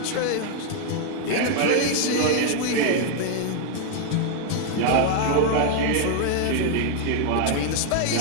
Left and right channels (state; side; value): different; both; correlation 0.00